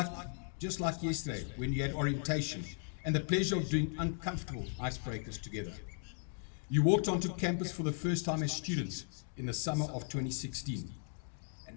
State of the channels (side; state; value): right; silent; 53 dB below the other